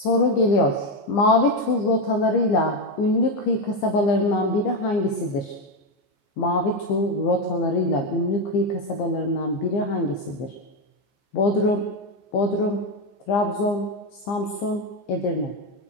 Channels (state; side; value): late; right; 15 ms